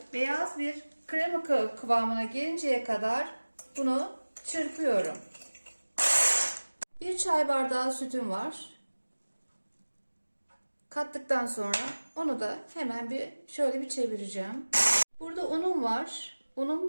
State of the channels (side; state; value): both; inverted; correlation -1.00